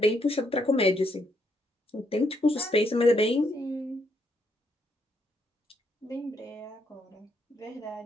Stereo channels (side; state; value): both; normal; correlation 0.75